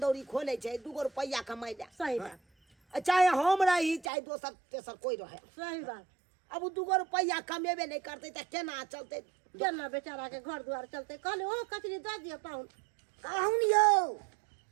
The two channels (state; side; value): drops out; left; at 4.1 s